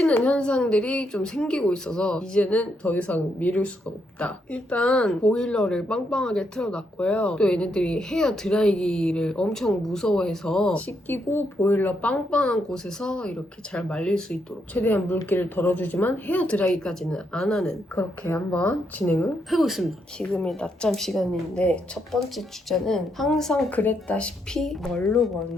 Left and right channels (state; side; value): normal; both; correlation 0.78